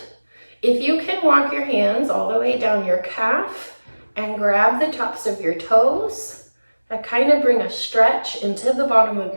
If you can walk your hands all the way down your calf and grab the tops of your toes, that kind of bring a stretch into the bottom of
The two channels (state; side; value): inverted; both; correlation -1.00